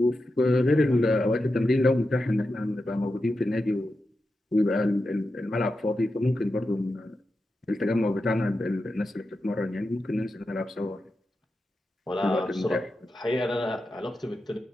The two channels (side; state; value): both; normal; correlation 0.90